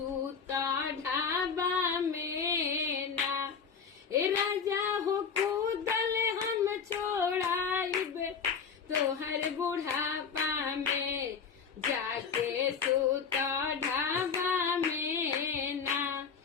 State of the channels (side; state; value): right; quieter; 6.2 dB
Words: ढाबा में ना ए राजा हो कूदल हम छोड़ाइबे तोहर बुढ़ापा में जाके सूता ढाबा में ना